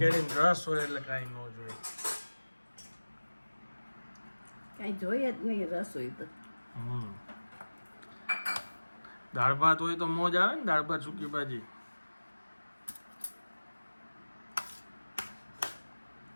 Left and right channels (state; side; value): inverted; both; correlation -1.00